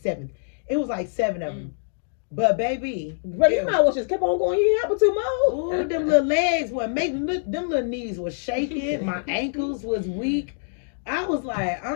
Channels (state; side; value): silent; right; digital silence